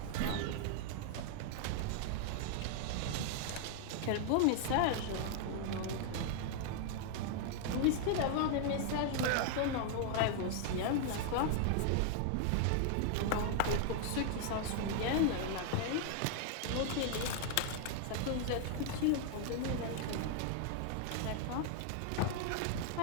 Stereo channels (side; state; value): both; different; correlation 0.00